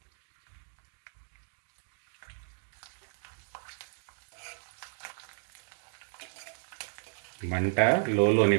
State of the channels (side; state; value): left; silent; digital silence